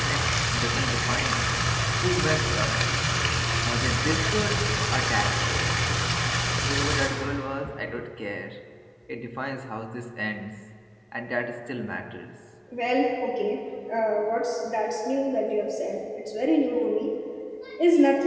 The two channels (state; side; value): identical; both; correlation 1.00